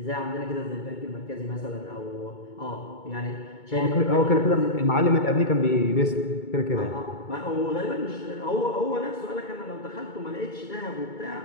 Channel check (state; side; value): late; right; 2.2 ms